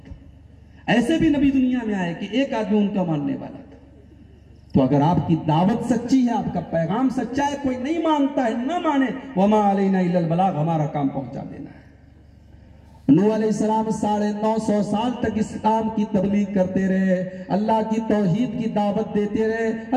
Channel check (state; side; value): identical; both; correlation 1.00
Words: ऐसे भी नबी दुनिया में आए कि एक आदमी उनका मानने वाला था। तो अगर आपकी दावत सच्ची है, आपका पैगाम सच्चा है, कोई नहीं मानता है, ना माने, वमा अलैना इल्लल बलाग, हमारा काम पहुंचा देना है। नूह अलैहिस्सलाम 950 साल तक इस्लाम की तबलीग करते रहे, अल्लाह की तौहीद की दावत देते रहे,